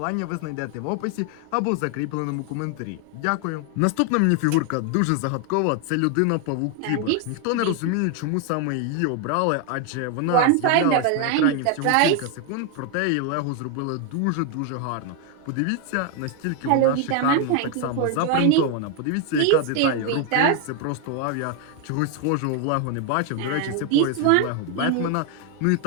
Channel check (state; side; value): different; both; correlation 0.01